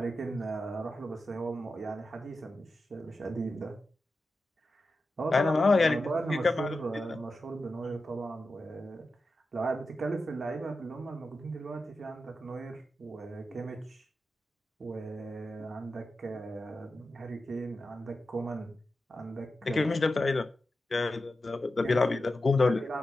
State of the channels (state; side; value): normal; both; correlation 0.91